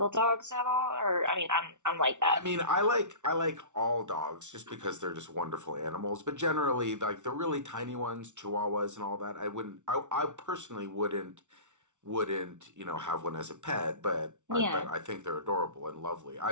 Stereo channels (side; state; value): left; late; 0.85 ms